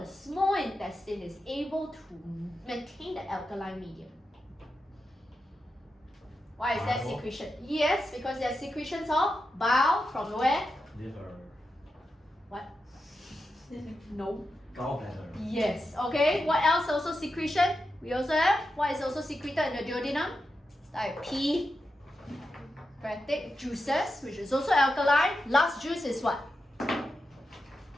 small intestine is able to maintain the alkaline medium? Why is that Bile. secretion? Yes, because there are secretions of bile from where? Liver. What? No. Gallbladder. Yes. Okay. What else also secretion? We also have what is also secreted in the duodenum? It's like pancreatic juices, which is also alkaline. Last juice is what?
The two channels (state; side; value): normal; both; correlation 0.89